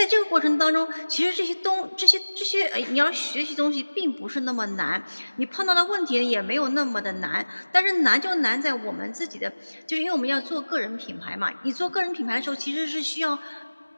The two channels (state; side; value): inverted; both; correlation -1.00